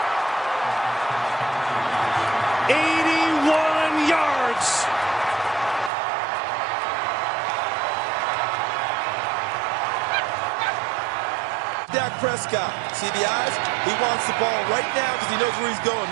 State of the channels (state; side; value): drops out; left; at 5.9 s